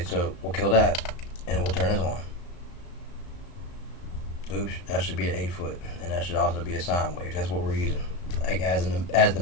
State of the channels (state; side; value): late; right; 34 ms